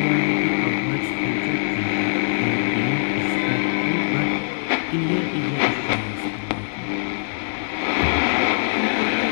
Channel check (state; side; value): silent; right; 64 dB below the other